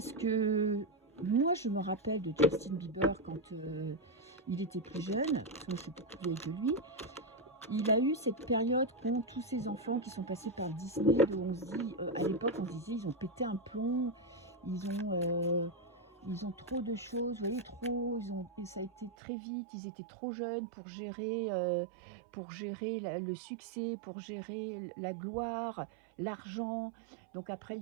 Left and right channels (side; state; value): left; drops out; at 19.1 s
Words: que moi, je me rappelle de Justin Bieber quand il était plus jeune. Moi, je suis plus vieille que lui. Il a eu cette période qu'ont tous ces enfants qui sont passés par Disney. On se dit, à l'époque, on se disait, ils ont pété un plomb. Ils ont trop de choses, vous voyez, trop. Et ça a été très vite. Ils étaient trop jeunes pour gérer le succès, pour gérer la gloire, l'argent. Donc après, il